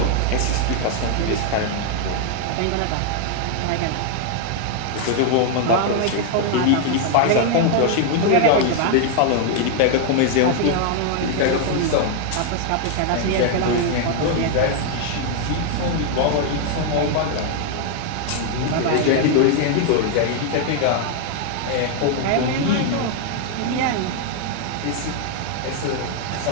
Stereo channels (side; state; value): both; different; correlation 0.00